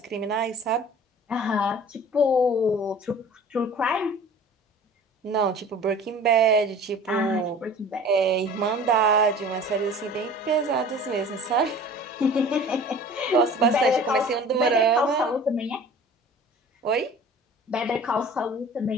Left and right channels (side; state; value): both; normal; correlation 0.44